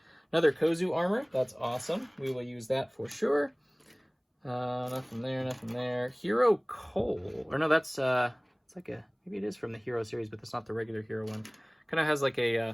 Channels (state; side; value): identical; both; correlation 1.00